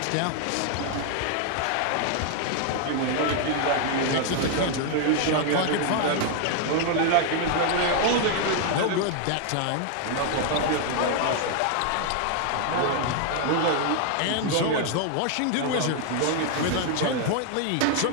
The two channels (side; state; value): both; different; correlation 0.00